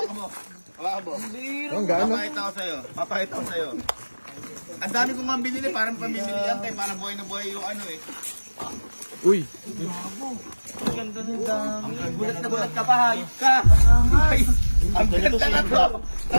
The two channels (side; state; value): both; inverted; correlation -1.00